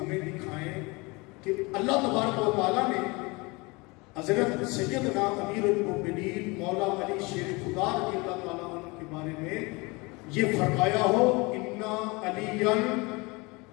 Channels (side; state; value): right; quieter; 26.1 dB